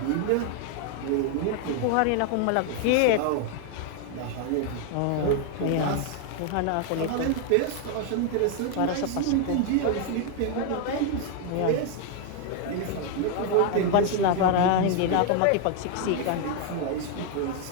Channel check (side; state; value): both; different; correlation 0.00